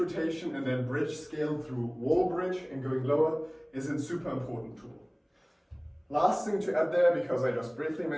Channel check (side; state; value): both; identical; correlation 1.00